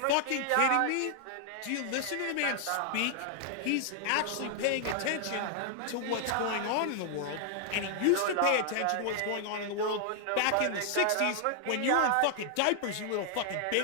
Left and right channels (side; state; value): both; different; correlation 0.00